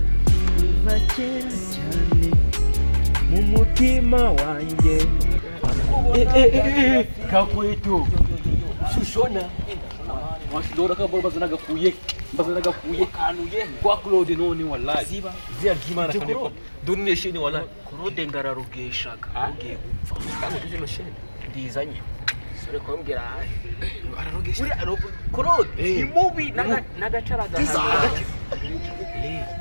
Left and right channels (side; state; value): both; inverted; correlation -1.00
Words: kuva kera cyane mu mutima wanjye. Kakwetu shushona washidora kabora bazanaga kuye kanuye kwa Claude none wallahi Ziba. zia gimana kane donne shini wallahi Claude ngararugeshaga ugiye gupfa kandi tuje shini ndizanye sore kumbwira ararogesha Claude ni mubi n'agacaraga